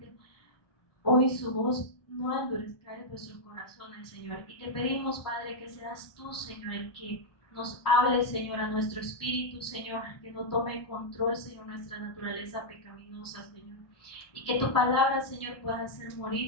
hoy su voz, no endurezcáis vuestros corazones, Señor. Y te pedimos, Padre, que seas tú, Señor, el que nos hable, Señor, a nuestro espíritu, Señor, que no tome control, Señor, nuestra naturaleza pecaminosa, Señor. Y que tu palabra, Señor, pueda hacer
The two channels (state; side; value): late; right; 1.2 ms